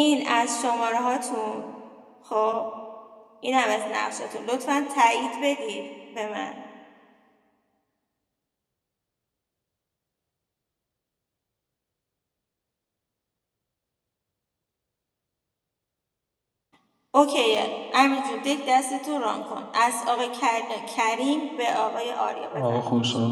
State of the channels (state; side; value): identical; both; correlation 1.00